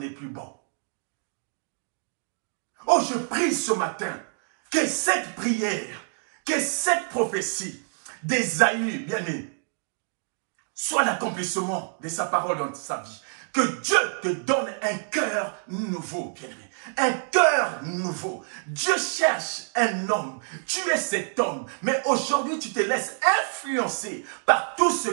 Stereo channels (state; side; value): silent; left; 60 dB below the other